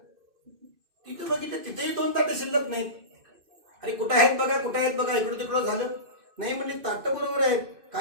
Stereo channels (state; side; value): late; left; 2.6 ms